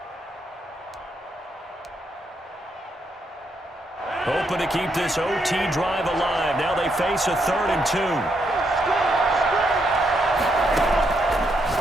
Hoping to keep this OT drive alive. Now they face a 3rd and 2.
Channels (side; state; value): both; normal; correlation 0.78